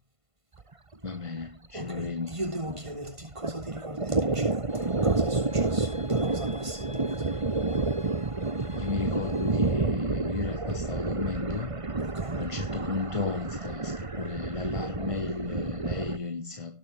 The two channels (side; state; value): left; late; 1.5 ms